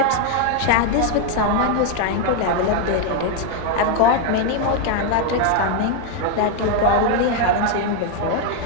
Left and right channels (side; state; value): both; different; correlation 0.01